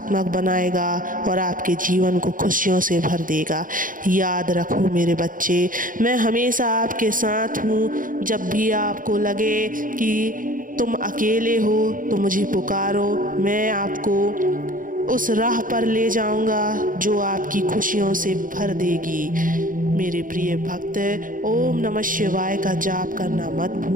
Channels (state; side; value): late; left; 0.39 ms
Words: बनाएगा और आपके जीवन को खुशियों से भर देगा। याद रखो मेरे बच्चे, मैं हमेशा आपके साथ हूँ। जब भी आपको लगे कि तुम अकेले हो तो मुझे पुकारो, मैं आपको उस राह पर ले जाऊंगा जो आपकी खुशियों से भर देगी। मेरे प्रिय भक्त, ओम नमः शिवाय का जाप करना मत